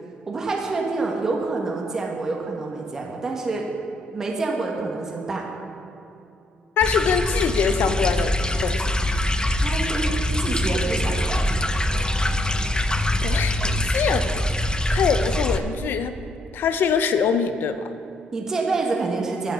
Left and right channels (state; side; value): normal; both; correlation 0.72